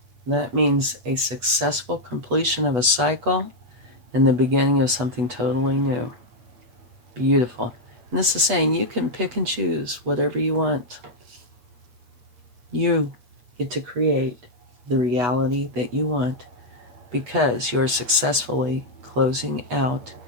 That means a successful completion of a cycle and the beginning of something totally new. Beautiful. And this is saying you can pick and choose whatever you want. You get to create the reality that you want because you're successfully closing out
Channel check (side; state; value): left; late; 8.6 ms